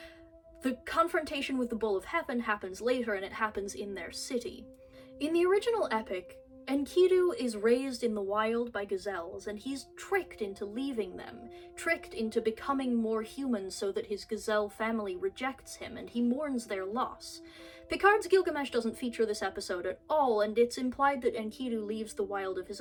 The confrontation with the Bull of Heaven happens later, and it happens in their city. In the original epic, Enkidu is raised in the wild by gazelles, and he's tricked into leaving them, tricked into becoming more human so that his gazelle family rejects him, and he mourns their loss. Picard's Gilgamesh doesn't feature this episode at all, and it's implied that Enkidu leaves the wild of his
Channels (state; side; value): identical; both; correlation 1.00